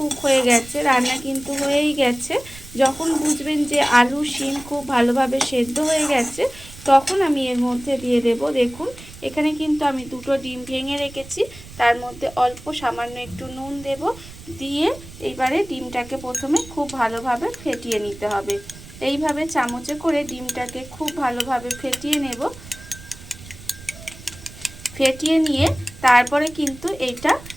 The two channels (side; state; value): right; noise; rumble, 17 dB below the sound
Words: হয়ে গেছে, রান্না কিন্তু হয়েই গেছে। যখন বুঝবেন যে আলু শিম খুব ভালোভাবে সেদ্ধ হয়ে গেছে, তখন আমি এর মধ্যে দিয়ে দেব দেখুন এখানে কিন্তু আমি দুটো ডিম ভেঙে রেখেছি, তার মধ্যে অল্প সামান্য একটু নুন দেব। দিয়ে এইবারে ডিমটাকে প্রথমে খুব ভালোভাবে ফেটিয়ে নিতে হবে। এইভাবে চামচে করে ডিমটাকে খুব ভালোভাবে ফেটিয়ে নেব। ফেটিয়ে নিয়ে তারপরে কিন্তু এইটা